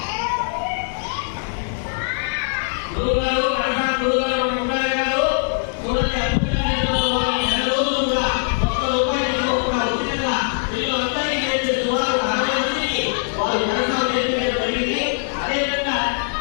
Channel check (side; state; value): right; silent; digital silence